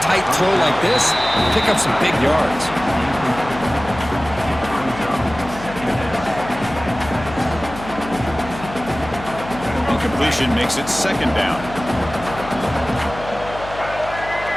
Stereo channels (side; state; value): left; noise; hum, 13 dB below the sound